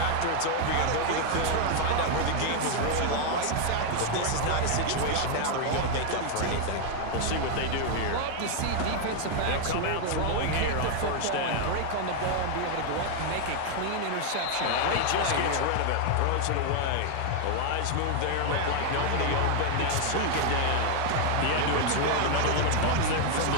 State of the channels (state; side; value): different; both; correlation 0.00